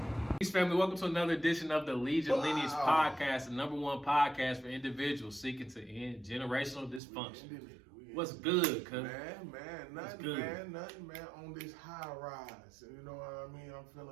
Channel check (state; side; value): drops out; left; at 7.0 s